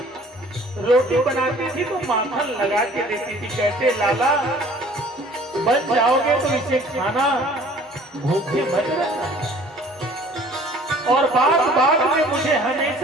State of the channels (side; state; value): both; normal; correlation 0.52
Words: रोटी बनाती थी तो माखन लगा के देती थी। कहते लाला बन जाओगे तो इसे खाना, भूखे मत रहना। और बात बात में मुझे